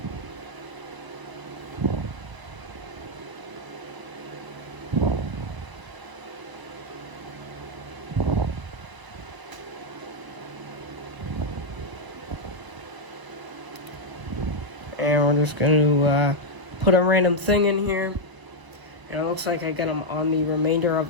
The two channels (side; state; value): left; late; 1.0 ms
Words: And we're just going to put a random thing in here. And it looks like I got them on the remainder